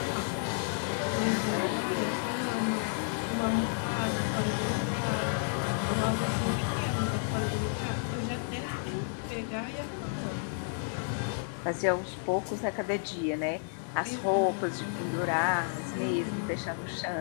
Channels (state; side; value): silent; right; digital silence